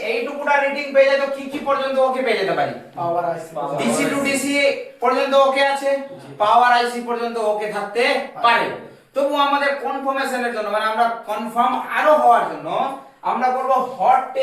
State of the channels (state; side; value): identical; both; correlation 1.00